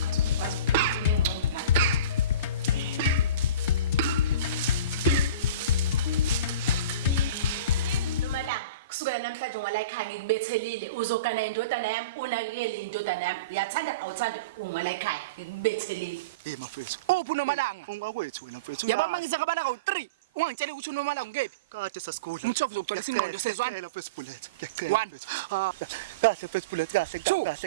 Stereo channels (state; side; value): inverted; both; correlation -0.33